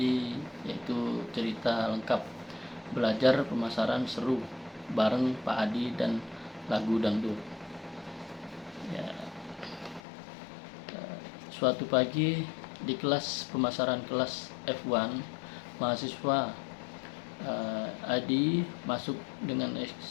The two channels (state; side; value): drops out; right; at 10.0 s